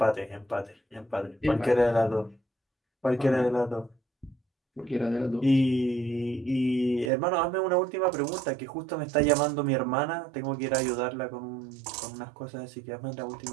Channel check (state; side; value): drops out; left; at 7.1 s